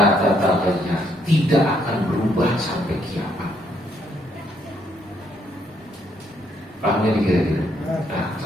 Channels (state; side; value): normal; both; correlation 0.72